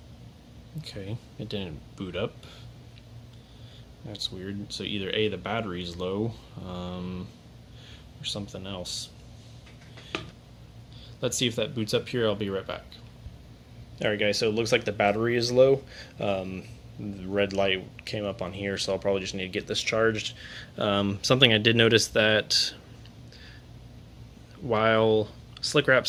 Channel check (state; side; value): identical; both; correlation 1.00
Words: Okay, it didn't boot up. That's weird. So either A, the battery's low, or something else. Let's see if that boots up here. I'll be right back. Alright guys, so it looks like the battery is low. The red light came up on here, so I'll probably just need to get this charged. Something I did notice that while Slick